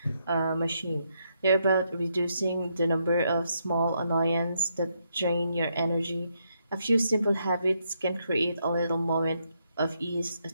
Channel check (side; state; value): both; inverted; correlation -0.78